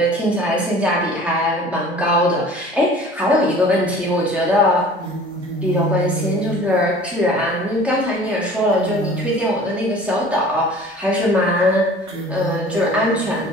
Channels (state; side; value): normal; both; correlation 0.46